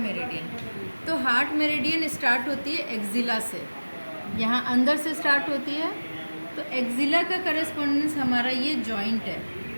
तो हार्ट मेरिडियन स्टार्ट होती है एक्जिला से, यहाँ अंदर से स्टार्ट होती है। तो एक्जिला का करेस्पॉन्डेंस हमारा ये जॉइंट है,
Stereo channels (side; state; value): both; inverted; correlation -1.00